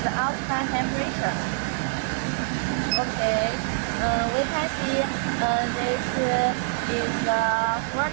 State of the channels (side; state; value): left; silent; digital silence